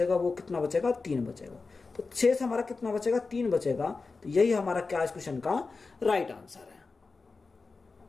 वो कितना बचेगा 3 बचेगा। तो शेष हमारा कितना बचेगा 3 बचेगा। तो यही हमारा क्या इस क्वेश्चन का राइट आंसर है।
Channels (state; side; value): quieter; right; 4.1 dB